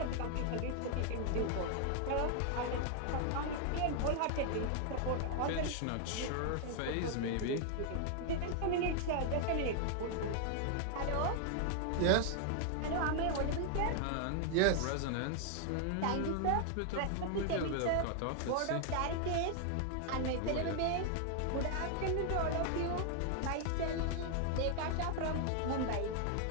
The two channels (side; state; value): both; different; correlation 0.00